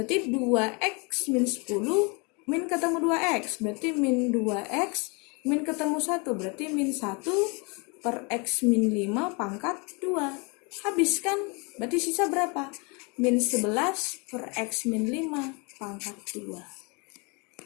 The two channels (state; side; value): quieter; right; 30.9 dB